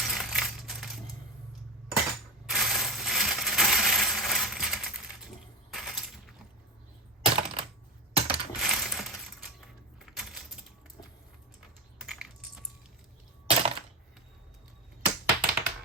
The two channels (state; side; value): normal; both; correlation 0.20